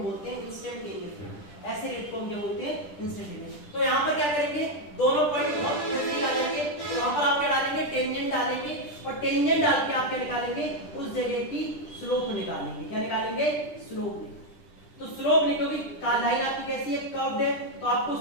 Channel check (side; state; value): right; late; 10 ms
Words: बोलते हैं इंस्टेंटेनियस रेट। ऐसे रेट को हम क्या बोलते हैं? इंस्टेंटेनियस। तो यहाँ पर क्या करेंगे, दोनों पॉइंट बहुत नजदीक आ जाएंगे। तो यहाँ पर आप क्या डालेंगे? टेंजेंट डालेंगे, और टेंजेंट डाल के आप क्या निकालेंगे? उस जगह की स्लोप निकालेंगे। क्या निकालेंगे? स्लोप। तो स्लोप निकलोगी, लाइन आपकी कैसी है? कर्व्ड है, तो आपको